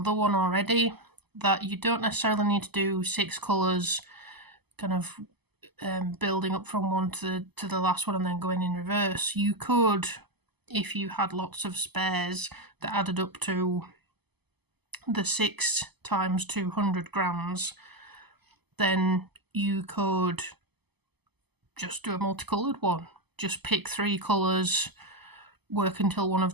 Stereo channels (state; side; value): late; left; 0.99 ms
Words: one already, that you don't necessarily need to do 6 colours kind of building up from one to the last one and then going in reverse. You could, if you had lots of spares that added up to the 6 times 200 grams, then you could just do a multicoloured one. Just pick 3 colours, work until one